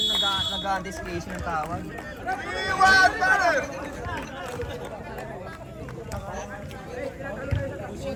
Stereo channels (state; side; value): identical; both; correlation 1.00